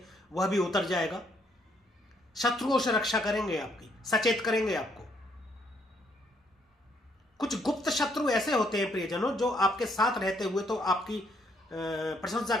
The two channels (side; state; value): both; normal; correlation 0.70